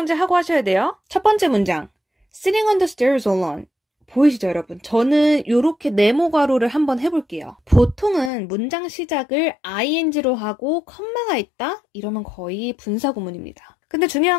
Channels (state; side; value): drops out; right; at 8.3 s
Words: 하고 하셔야 돼요. 첫 번째 문장, Sitting on the stairs alone. 보이시죠, 여러분? 저는 이렇게 네모 괄호를 한번 해볼게요. 보통은 문장 시작을 ing로 하고 컴마가 있다? 이러면 거의 분사구문입니다. 근데